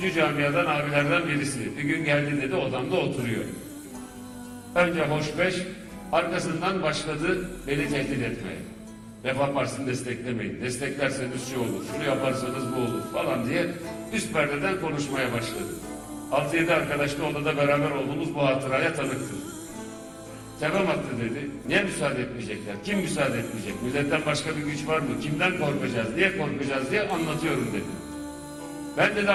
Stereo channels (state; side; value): identical; both; correlation 1.00